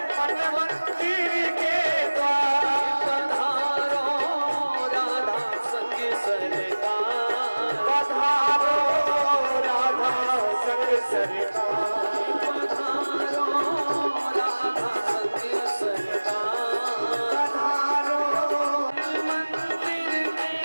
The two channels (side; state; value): both; inverted; correlation -1.00